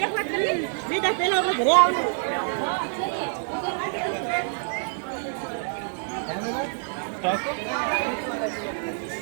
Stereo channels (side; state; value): left; silent; 59 dB below the other